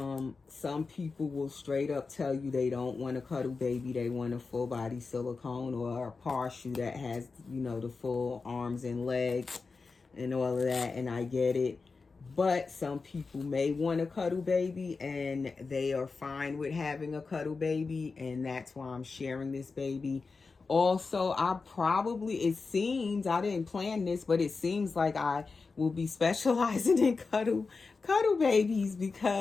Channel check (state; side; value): quieter; right; 4.4 dB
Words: Some people will straight up tell you they don't want a cuddle baby, they want a full body silicone or a partial that has, the full arms and legs and all of that, and I get it. But some people may want a cuddle baby and they are fine with having a cuddle baby, and that's why I'm sharing this baby. Also, it seems, I didn't plan this, but it seems like I will be specializing in cuddle babies